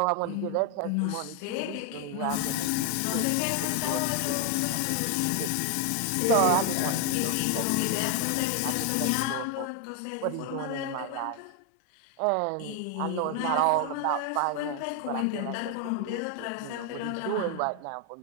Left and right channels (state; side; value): different; both; correlation 0.00